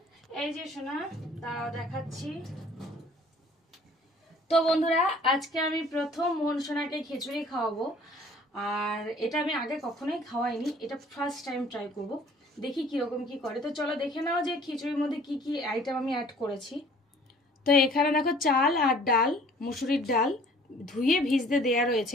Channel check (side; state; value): both; normal; correlation 0.53